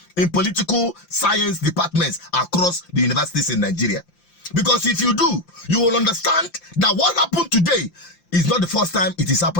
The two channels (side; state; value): right; late; 5.8 ms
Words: in political science departments across the universities in Nigeria. Because if you do, you will understand that what happened today is not the first time it is